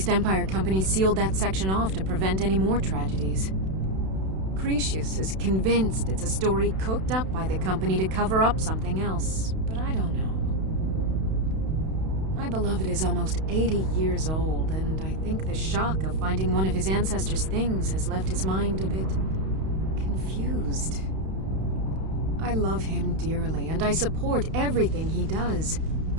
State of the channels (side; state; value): left; late; 32 ms